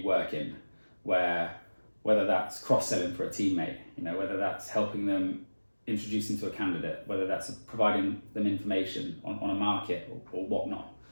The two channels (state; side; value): inverted; both; correlation -1.00